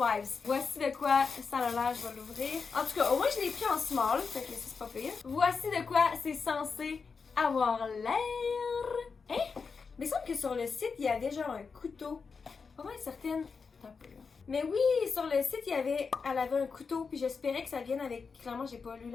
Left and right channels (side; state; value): right; quieter; 5.2 dB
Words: Voici de quoi ça a l'air, je vais l'ouvrir. En tout cas, au moins je l'ai pris en small, fait que c'est pas pire. Voici de quoi c'est censé avoir l'air. Hein? Mais il semble que sur le site, il y avait genre un couteau. Pas mal certaine. Un peu là. Mais oui, sur le site, elle avait un couteau, puis j'espérais que ça vienne avec... Clairement, j'ai pas lu